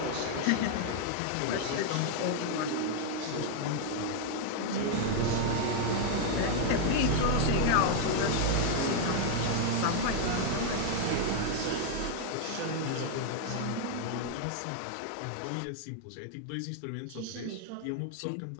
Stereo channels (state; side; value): different; both; correlation 0.00